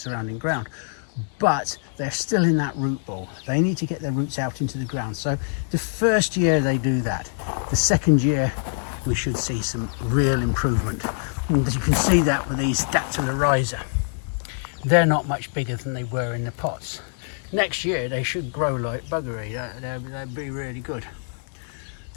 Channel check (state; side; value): silent; right; digital silence